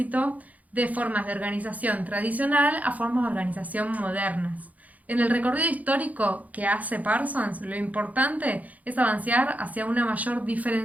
de formas de organización tradicional a formas de organización modernas. En el recorrido histórico que hace Parsons, lo importante es avanzar hacia una mayor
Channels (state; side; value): late; left; 0.075 ms